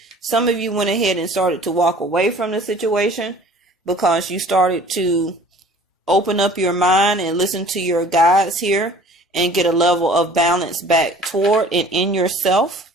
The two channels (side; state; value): both; normal; correlation 0.49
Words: Some of you went ahead and started to walk away from the situation because you started to open up your mind and listen to your guides here and get a level of balance back toward and in yourself.